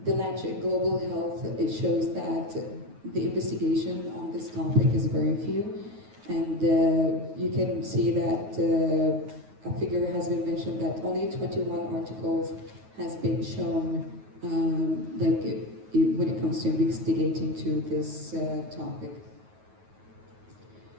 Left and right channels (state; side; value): late; left; 9.4 ms